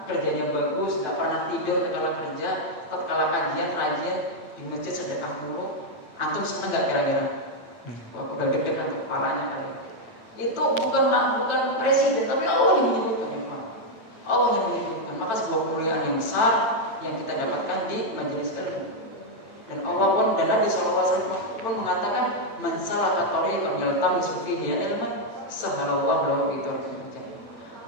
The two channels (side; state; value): right; late; 8.8 ms